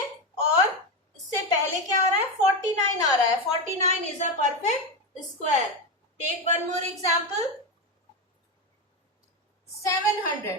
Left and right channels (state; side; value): normal; both; correlation 0.13